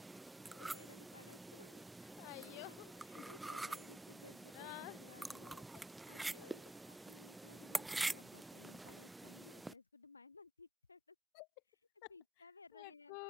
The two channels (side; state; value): both; normal; correlation 0.82